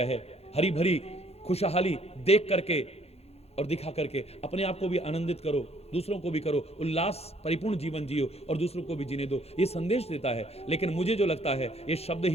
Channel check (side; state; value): right; late; 0.30 ms